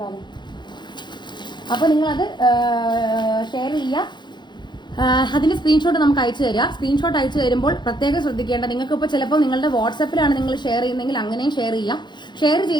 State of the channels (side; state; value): right; late; 0.22 ms